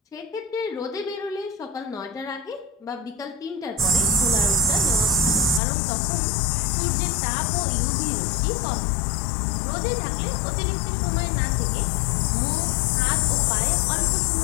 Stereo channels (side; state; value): right; drops out; at 5.6 s